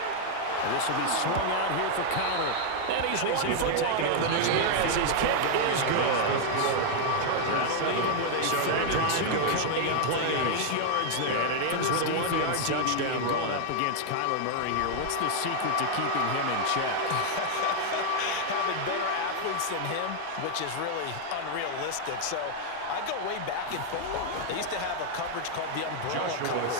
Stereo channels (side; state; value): both; different; correlation 0.00